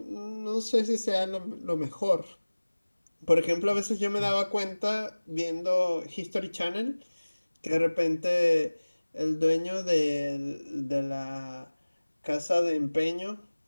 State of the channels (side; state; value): both; inverted; correlation -1.00